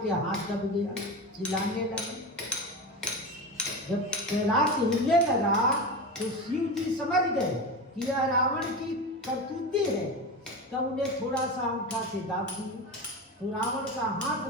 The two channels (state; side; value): normal; both; correlation 0.23